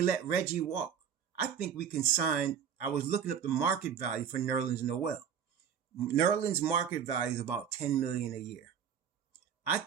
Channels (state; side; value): quieter; left; 8.0 dB